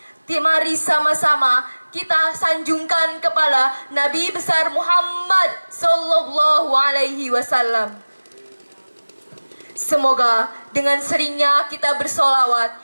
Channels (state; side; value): inverted; both; correlation -1.00